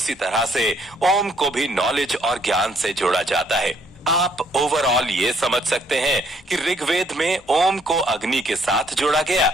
तरह से ओम को भी नॉलेज और ज्ञान से जोड़ा जाता है। आप ओवरऑल ये समझ सकते हैं कि ऋग्वेद में ओम को अग्नि के साथ जोड़ा गया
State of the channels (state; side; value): normal; both; correlation 0.66